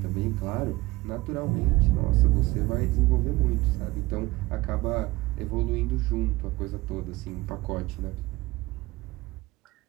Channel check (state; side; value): quieter; left; 20.3 dB